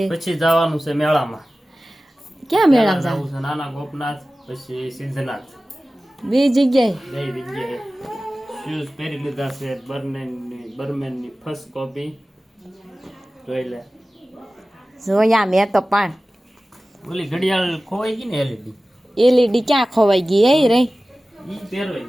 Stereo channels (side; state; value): both; normal; correlation 0.96